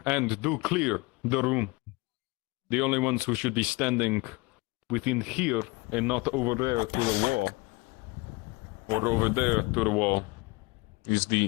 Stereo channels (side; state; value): right; quieter; 25.0 dB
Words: And do clear the room. The only ones who should be standing within here and not over there to the wall, or over there to the wall, is